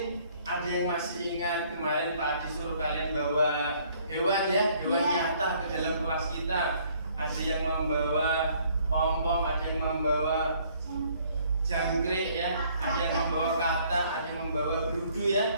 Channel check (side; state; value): both; inverted; correlation -0.62